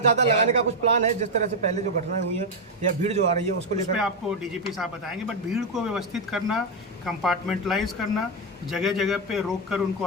ज़्यादा लगाने का कुछ प्लान है, जिस तरह से पहले जो घटनाएं हुई हैं या भीड़ जो आ रही है उसको लेकर? आपको डीजीपी साहब बताएंगे, बट भीड़ को व्यवस्थित करना, कंपार्टमेंटलाइज करना, जगह जगह पे रोक कर उनको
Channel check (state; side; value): normal; both; correlation 0.03